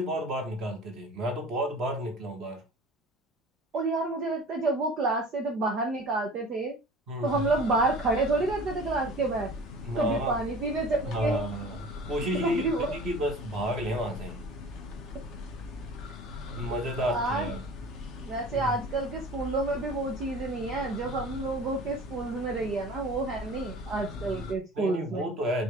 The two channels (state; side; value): normal; both; correlation 0.42